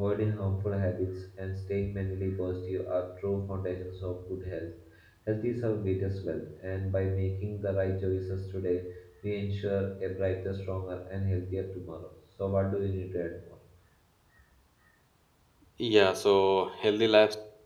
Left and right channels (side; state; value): both; identical; correlation 1.00